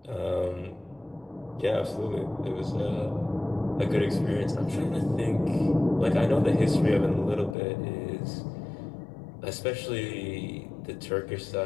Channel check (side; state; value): right; drops out; at 7.6 s